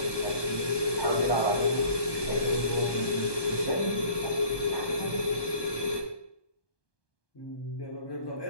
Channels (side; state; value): right; late; 1.2 ms